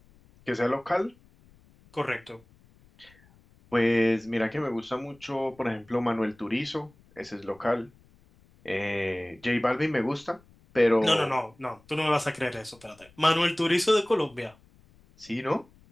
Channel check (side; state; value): left; noise; rumble, 29 dB below the sound